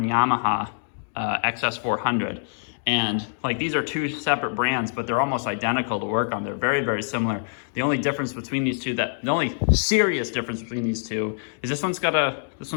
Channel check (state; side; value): silent; right; digital silence